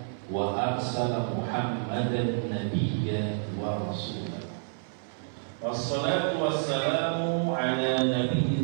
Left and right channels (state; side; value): silent; left; 59 dB below the other